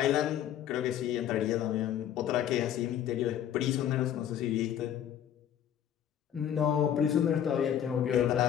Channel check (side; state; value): right; quieter; 10.1 dB